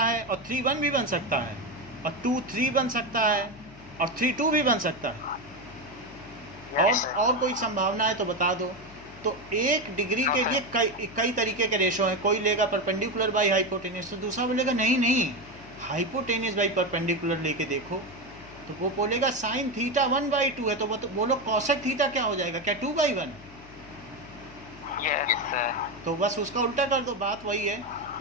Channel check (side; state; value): left; noise; hum, 21 dB below the sound